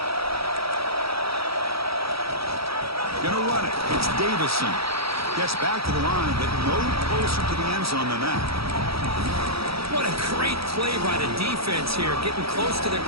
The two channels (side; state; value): left; late; 0.76 ms